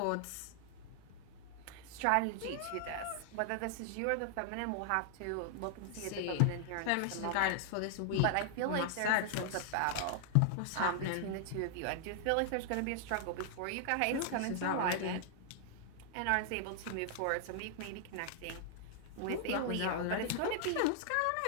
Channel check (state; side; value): different; both; correlation 0.00